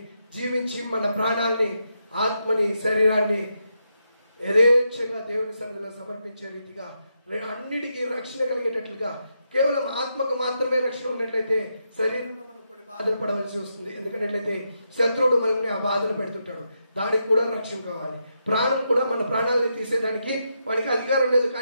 జీవించి మన ప్రాణాల్ని, ఆత్మని, శరీరాన్ని యథేచ్ఛగా దేవుని సన్నిధిలో సమర్పించే రీతిగా అన్నిటికీ రక్షణ కలిగేటట్లుగా, కేవలం ఆత్మకు మాత్రమే రక్షణ ఉన్నట్లయితే శరీరంలో మనం కొన్ని బాధలు పడవలసి వస్తుంది. ఎందుకంటే శత్రువుడు మనల్ని ఆ బాధలు పెడుతుంటాడు, దానికి కూడా రక్షణ కావాలి. ప్రాణం కూడా, మన ప్రాణాలని తీసేదానికి వాడికి అధికారం లేదు.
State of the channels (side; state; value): both; inverted; correlation -0.83